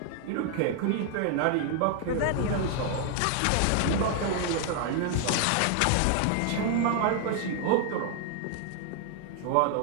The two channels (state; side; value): different; both; correlation 0.00